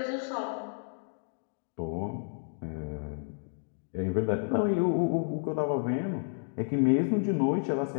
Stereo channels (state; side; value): silent; right; digital silence